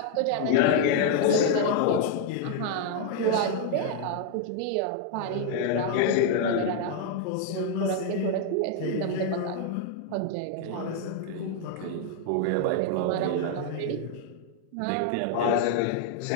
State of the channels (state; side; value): different; both; correlation 0.00